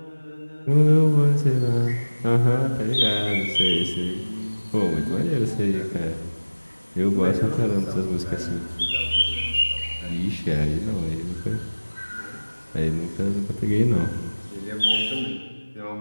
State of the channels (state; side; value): inverted; both; correlation -1.00